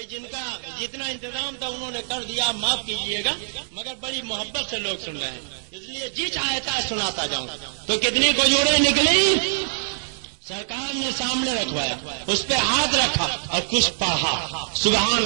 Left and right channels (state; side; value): silent; left; digital silence